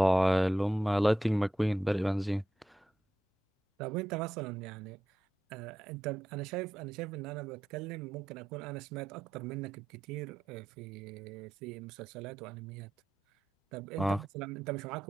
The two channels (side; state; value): both; normal; correlation 0.87